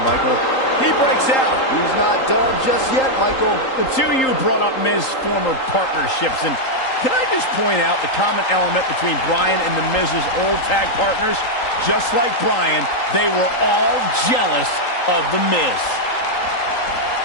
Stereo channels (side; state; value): right; late; 3.8 ms